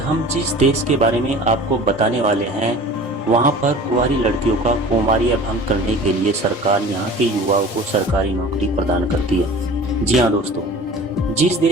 जिस देश के बारे में आपको बताने वाले हैं, वहां पर कुंवारी लड़कियों का कौमार्य भंग करने के लिए सरकार यहां के युवाओं को सरकारी नौकरी प्रदान करती है। जी हाँ दोस्तों, जिस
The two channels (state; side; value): normal; both; correlation 0.41